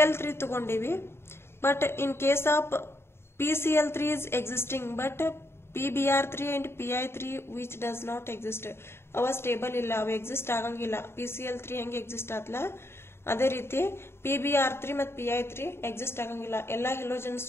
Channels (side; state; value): right; late; 0.12 ms